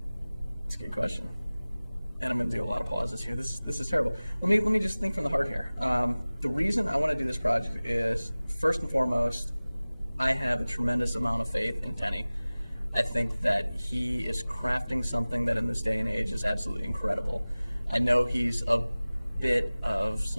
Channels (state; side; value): inverted; both; correlation -0.98